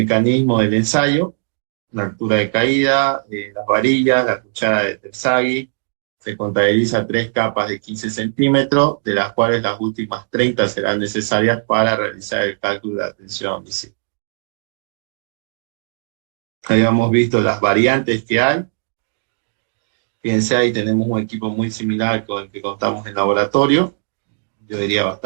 del ensayo, la altura de caída, las varillas, la cuchara de Terzaghi. Se contabiliza 3 capas de 15 centímetros, de las cuales las últimas 30 serán necesarias para realizar el cálculo de la tensión visible. Habíamos visto las variantes que hay. Fíjense, ahí tenemos un equipo muy similar con el que contamos en laboratorio, yo diría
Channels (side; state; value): left; silent; digital silence